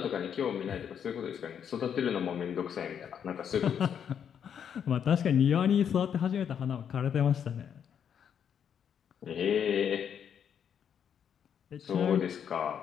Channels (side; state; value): right; quieter; 8.2 dB